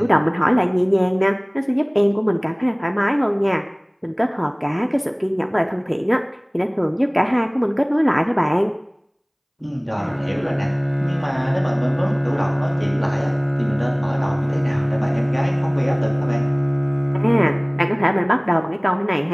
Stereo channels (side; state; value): both; identical; correlation 1.00